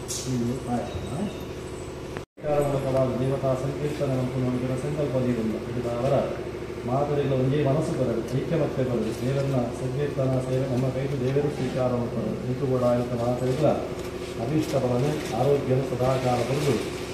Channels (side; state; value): both; identical; correlation 1.00